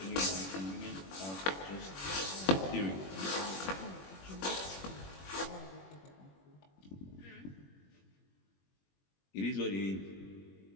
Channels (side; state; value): right; late; 21 ms